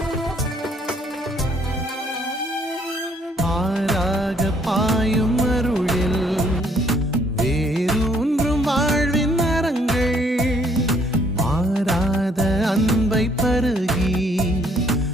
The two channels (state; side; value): normal; both; correlation 0.65